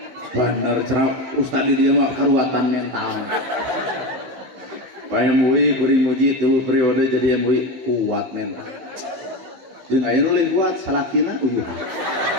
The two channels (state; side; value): late; left; 15 ms